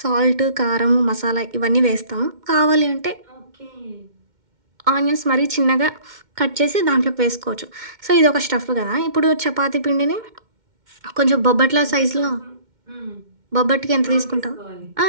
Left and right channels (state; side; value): late; left; 2.1 ms